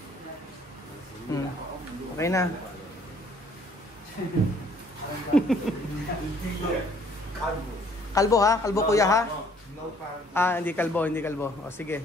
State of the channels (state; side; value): normal; both; correlation 0.60